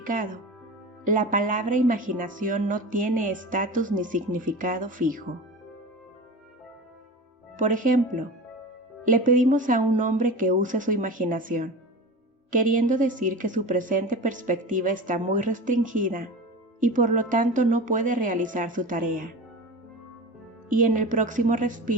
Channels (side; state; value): both; normal; correlation 0.31